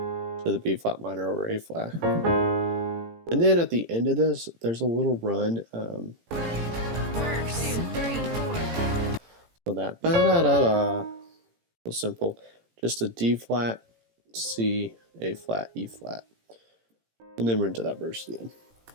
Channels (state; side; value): late; left; 18 ms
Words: the B flat minor over A flat. And then at the end of this, there's a little run. So that ba-da-da-da, so simple. Just a D flat, C, A flat, E flat. And then we're into that verse again.